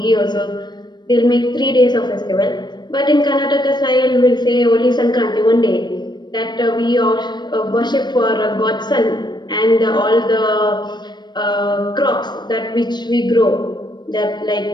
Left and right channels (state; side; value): late; right; 0.21 ms